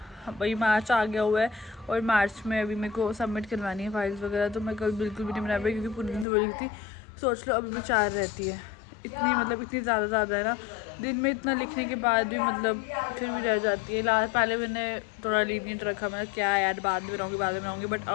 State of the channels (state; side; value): drops out; right; at 6.2 s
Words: भाई मार्च आ गया हुआ है और मार्च में अभी मेरे को सबमिट करवानी है फाइल्स वगैरह। तो मैं कल बिल्कुल भी नहीं बना पाई क्योंकि पूरे दिन तो बड़ी थी। सोच लो अभी भी 4 रहती है, इतनी ज़्यादा है ना। दिन में इतना लिखने के बाद भी मतलब फिर भी रह जाती है। पहले मैंने थोड़ा लीनियंट रखा, मैं क्या यार बाद में बनाऊँगी, बट